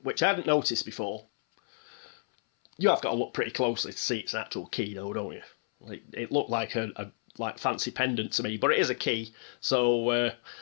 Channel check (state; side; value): silent; right; 57 dB below the other